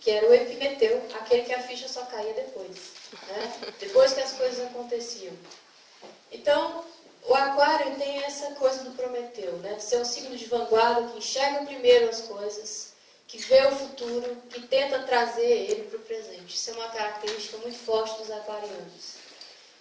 que era o Epimeteu, aquele que a ficha só caía depois, né? Depois que as coisas aconteciam. Então, o Aquário tem essa coisa do Prometeu, né? De ser um signo de vanguarda, que enxerga primeiro as coisas, que vê o futuro, que tenta trazer ele para o presente. Isso é uma característica muito forte dos aquarianos.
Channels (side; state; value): both; identical; correlation 1.00